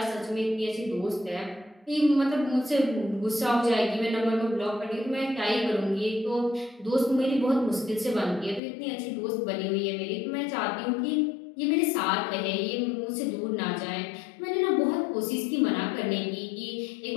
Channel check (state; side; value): drops out; right; at 8.6 s